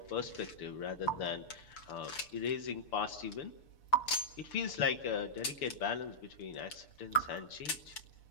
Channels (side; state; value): right; late; 6.8 ms